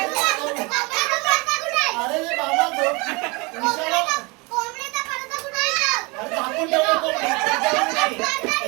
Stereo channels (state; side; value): quieter; left; 27.4 dB